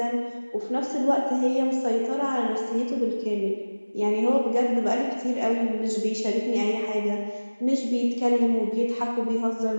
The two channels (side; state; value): both; inverted; correlation -1.00